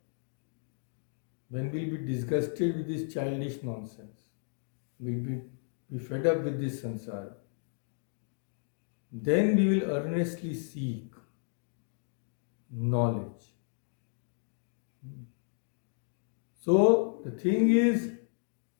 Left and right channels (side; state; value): right; silent; digital silence